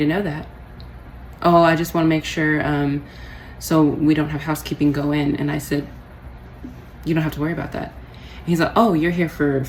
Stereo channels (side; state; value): both; identical; correlation 1.00